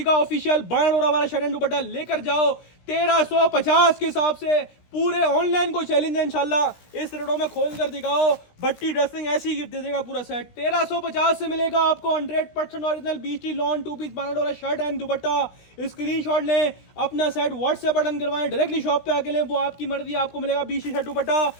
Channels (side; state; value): right; late; 17 ms